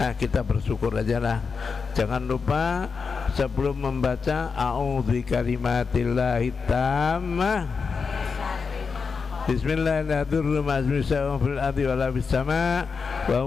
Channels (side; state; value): right; quieter; 5.2 dB